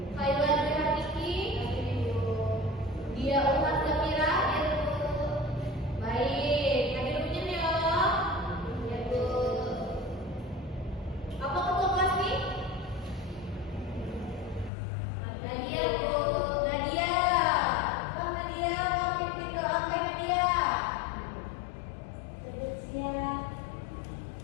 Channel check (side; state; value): right; drops out; at 14.7 s